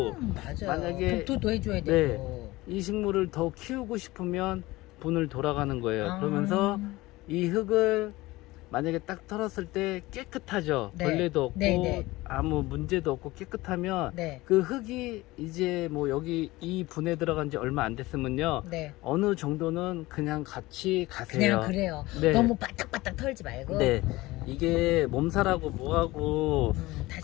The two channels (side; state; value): right; quieter; 19.6 dB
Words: 맞아. 만약에 독토도 해줘야 네. 되고. 이 식물을 더 키우고 싶으면 분을 돌아가는 거예요. 그러면서 이 흙을 만약에 딱 털었을 때 깨끗하죠. 네. 벌레도 없고 네, 네. 아무 문제도 없고 깨끗하면 네. 그 흙이 이제 뭐 여기 이 분에 들어간 지 얼마 안 됐으면요, 네. 어느 정도는 그냥 같이 가세요. 그냥 그래요. 네. 너무 바닥바닥 털지 말고. 네. 이게 몸살하고 뭐하고